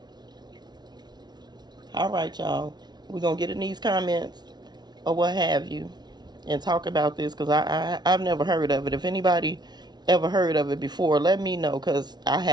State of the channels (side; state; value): left; late; 0.20 ms